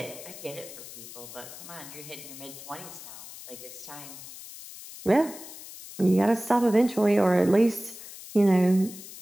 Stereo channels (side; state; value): left; noise; hiss, 14 dB below the sound